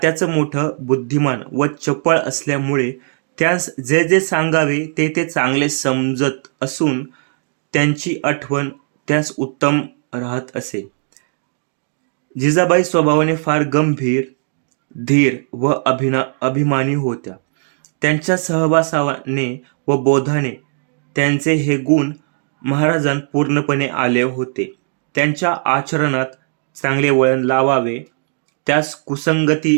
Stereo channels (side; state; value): left; silent; 67 dB below the other